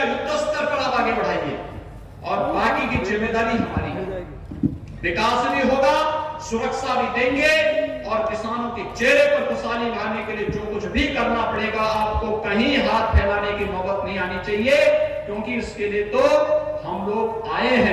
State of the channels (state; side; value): identical; both; correlation 1.00